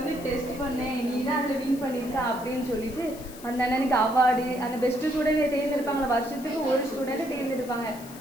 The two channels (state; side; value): noise; left; hiss, 18 dB below the sound